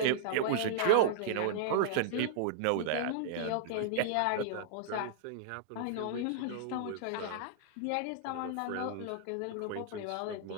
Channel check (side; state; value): both; different; correlation -0.01